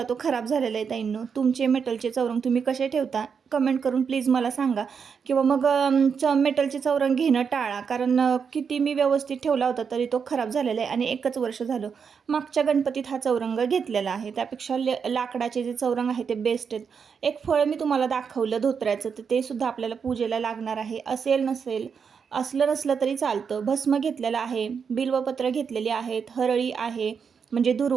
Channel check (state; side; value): quieter; left; 6.4 dB